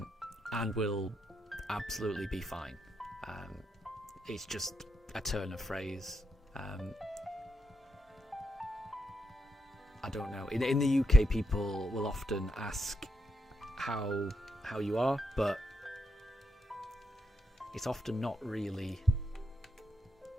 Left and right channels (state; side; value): normal; both; correlation 0.82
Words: will absolutely be fine. It's just a turn of phrase. I don't know. In the UK, people will often ask how you are, but it's often not really.